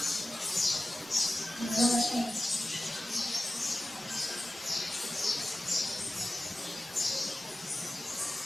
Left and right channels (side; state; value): both; normal; correlation 0.95